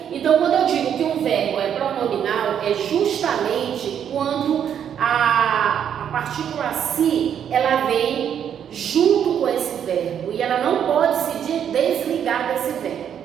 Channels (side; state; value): left; quieter; 8.8 dB